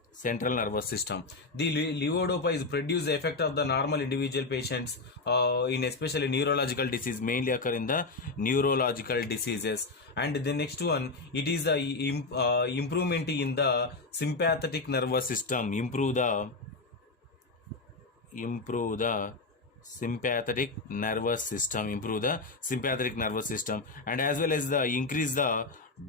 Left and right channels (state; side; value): quieter; right; 3.6 dB